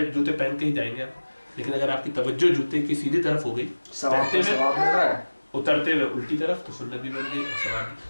जूते पहन के ही जाएंगे आप। लेकिन अगर आपकी तवज्जो जूते की सीधी तरफ हो गई, पहनते हुए उतरते हुए उल्टी तरफ, तो सुन्नत भी बन गई और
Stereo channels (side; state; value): both; inverted; correlation -1.00